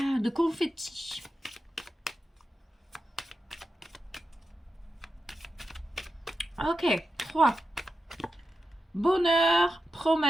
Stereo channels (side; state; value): both; normal; correlation 0.89